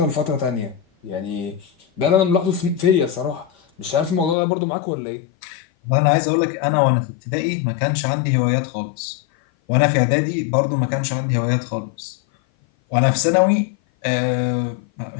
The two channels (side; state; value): right; drops out; at 4.4 s